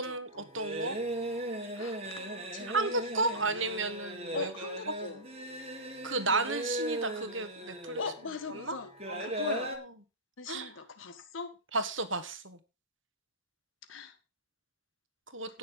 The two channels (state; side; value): normal; both; correlation -0.18